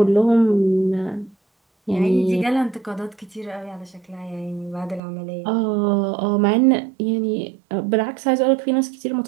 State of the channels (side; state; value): left; drops out; at 5.0 s